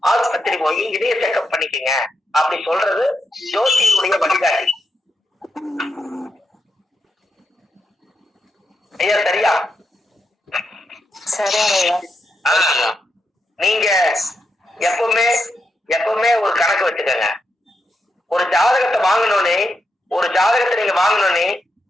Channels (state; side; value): normal; both; correlation 0.83